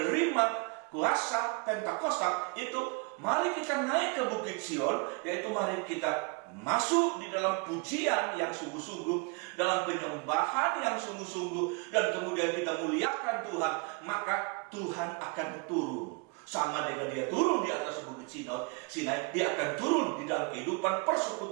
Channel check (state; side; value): quieter; left; 30.0 dB